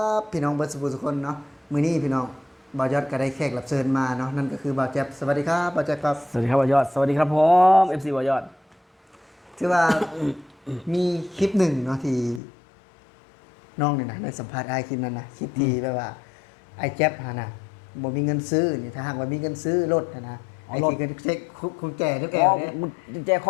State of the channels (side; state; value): right; drops out; at 12.4 s